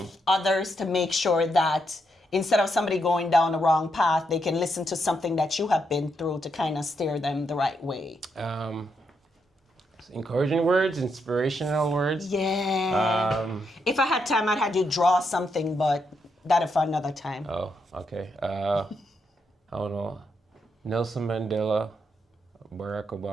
others to make sure that instead of somebody going down the wrong path, they can listen to something that you have been through to kind of steer them the right way. Encouraging words, inspirational words. Yeah. If I had time, I'd have you draw something, but that'll for another time. Oh, okay. I don't know. Nelson Mandela, Barack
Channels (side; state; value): both; normal; correlation 0.80